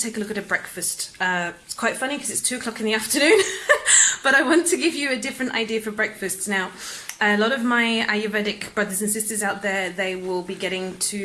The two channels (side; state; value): both; identical; correlation 1.00